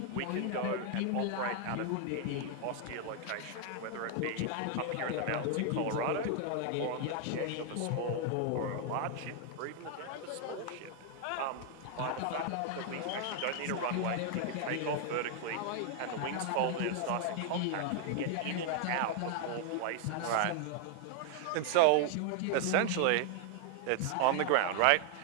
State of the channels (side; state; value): both; different; correlation 0.00